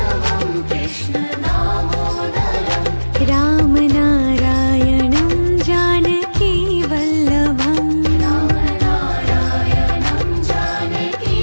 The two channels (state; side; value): inverted; both; correlation -1.00